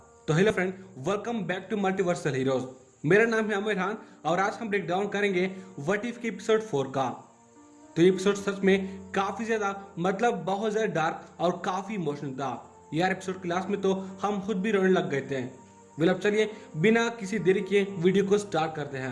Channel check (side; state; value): both; identical; correlation 1.00